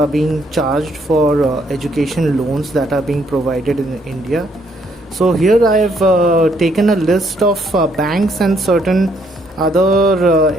being charged for education loans that are being provided in India. So here I have taken a list of banks and certain other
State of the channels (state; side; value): normal; both; correlation 0.70